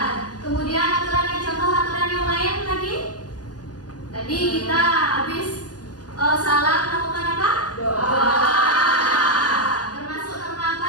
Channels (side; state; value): right; late; 0.69 ms